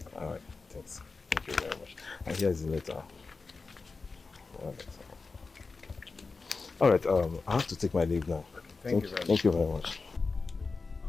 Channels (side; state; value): right; quieter; 4.2 dB